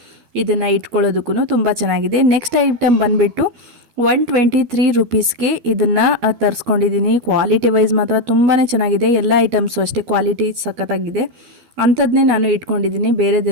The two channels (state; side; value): late; left; 12 ms